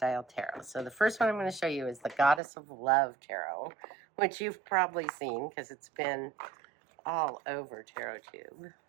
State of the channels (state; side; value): drops out; left; at 2.4 s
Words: tarot. So the first one I'm going to show you is the Goddess of Love Tarot, which you've probably seen because it's been all over TarotTube.